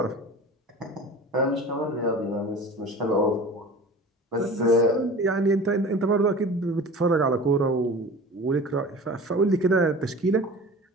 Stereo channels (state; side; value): normal; both; correlation 0.38